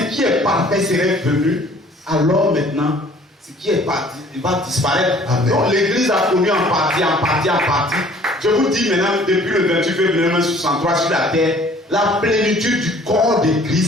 qui est parfait serait venu, alors maintenant, ce qui est parti, il va disparaître. Amen. Donc l'église a connu en partie. Je vous dis maintenant, depuis le 28 février 1963 sur la terre, la plénitude du corps de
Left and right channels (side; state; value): both; normal; correlation 0.54